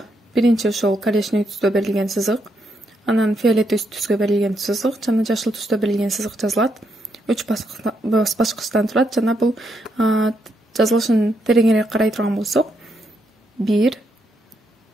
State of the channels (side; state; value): both; normal; correlation 0.78